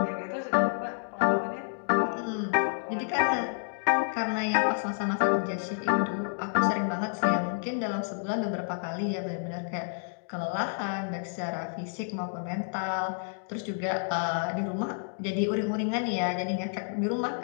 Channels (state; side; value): silent; right; digital silence